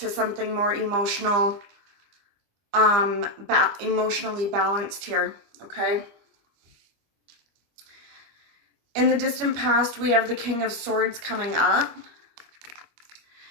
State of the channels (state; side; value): late; left; 25 ms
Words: something more emotional, emotionally balanced here, okay? In the distant past, we have the King of Swords coming up.